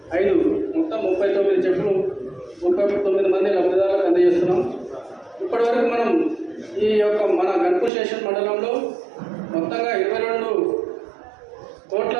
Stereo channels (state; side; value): drops out; left; at 7.9 s